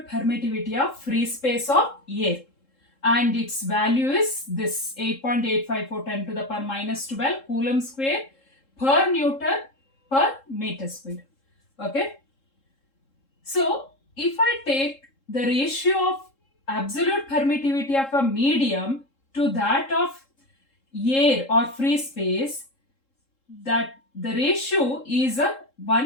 permittivity of free space of air. And its value is this 8.854 10 to the power minus 12 Coulomb square per Newton per meter square. Okay. So if I take the ratio of absolute permittivity of a medium to that of air or free space, that the ratio is a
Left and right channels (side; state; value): right; late; 3.7 ms